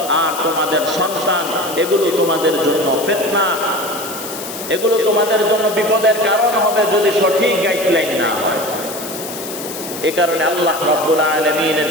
আর তোমাদের সন্তান, এগুলো তোমাদের জন্য ফিতনা, এগুলো তোমাদের জন্য বিপদের কারণ হবে যদি সঠিক গাইডলাইন না হয়। এ কারণে আল্লাহ রাব্বুল আলামিনের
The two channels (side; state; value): left; noise; hiss, 10 dB below the sound